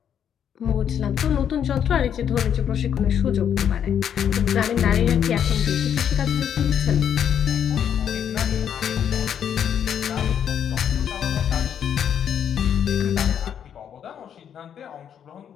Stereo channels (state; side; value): quieter; right; 8.8 dB